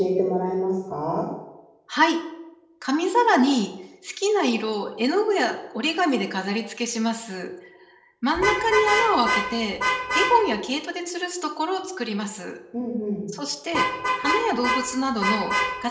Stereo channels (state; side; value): identical; both; correlation 1.00